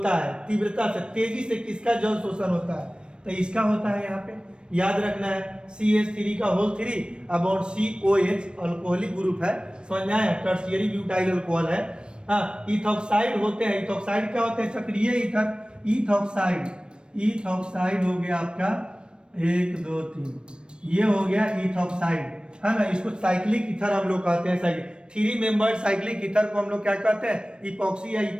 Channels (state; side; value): late; left; 0.054 ms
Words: है? तीव्रता से, तेजी से किसका जल शोषण होता है? तो इसका होता है, यहाँ पे याद रखना है, CH3 का whole 3 upon COH, alcoholic group है, समझ में आया? टर्शियरी ब्यूटाइल अल्कोहल है। हाँ, इथॉक्साइड होते हैं। इथॉक्साइड क्या होते हैं? सक्रिय ईथर, इथॉक्साइड हो गया आपका 1 2 3, ये हो गया इथॉक्साइड, है ना। इसको साइक्लिक ईथर हम लोग कहते हैं। 3 मेंबर्ड साइक्लिक ईथर को हम लोग क्या कहते हैं? इपॉक्सी या